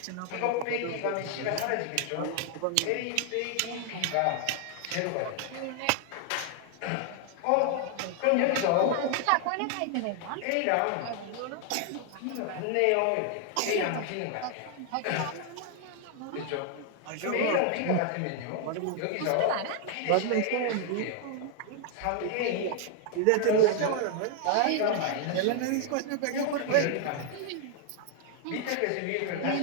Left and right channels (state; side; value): different; both; correlation 0.00